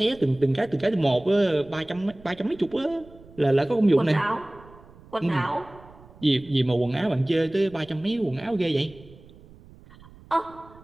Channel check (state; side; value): noise; right; rumble, 23 dB below the sound